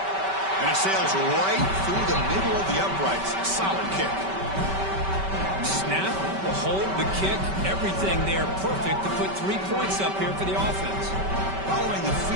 And it sails right through the middle of the uprights. Solid kick. Snap, the hold, the kick, everything there perfect to put 3 points up here for the offense. Following the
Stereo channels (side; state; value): left; late; 5.2 ms